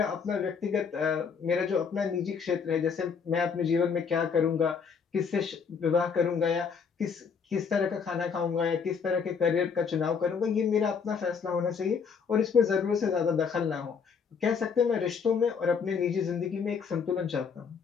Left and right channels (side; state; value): right; quieter; 6.1 dB